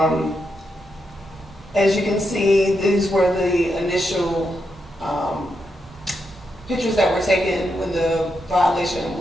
As you can see, these were the initial pictures that were taken when the violation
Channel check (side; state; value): both; normal; correlation 0.83